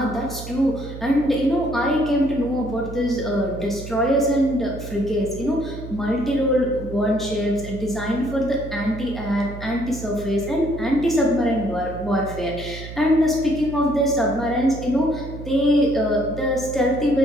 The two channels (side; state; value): right; noise; hum, 11 dB below the sound